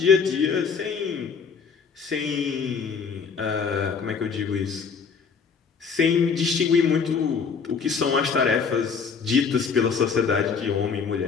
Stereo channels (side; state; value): right; quieter; 5.8 dB